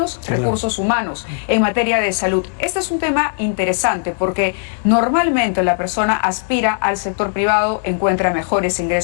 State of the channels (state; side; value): silent; right; digital silence